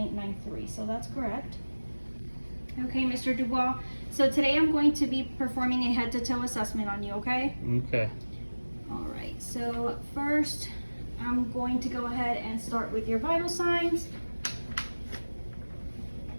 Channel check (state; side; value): inverted; both; correlation -1.00